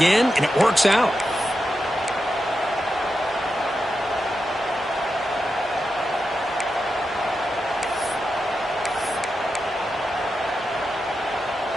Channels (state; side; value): normal; both; correlation 0.88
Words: and it works out.